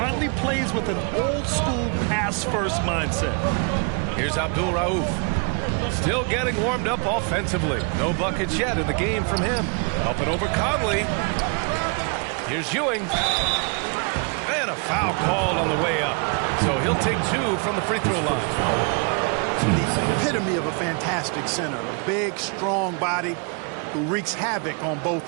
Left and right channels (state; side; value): quieter; left; 36.8 dB